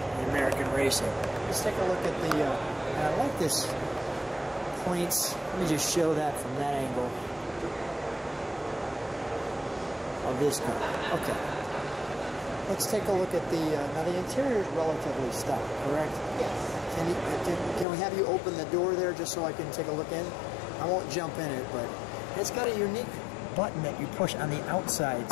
The American racing. Let's take a look at the, and I like this points. Let me just show that from that angle of this car. Okay. Let's take a look at the, now the interior is relatively stock, correct? Yes. Can we have you open the door there just so I can take a look in? I won't jump in it, but it's got a unique button that you push on the outside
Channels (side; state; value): right; drops out; at 17.9 s